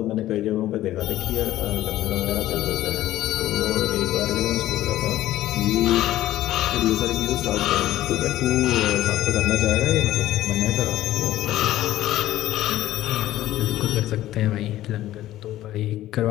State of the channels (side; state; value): right; quieter; 14.4 dB